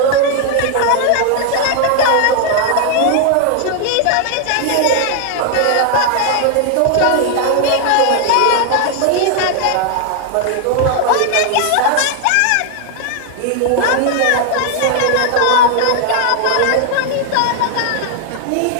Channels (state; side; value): different; both; correlation 0.00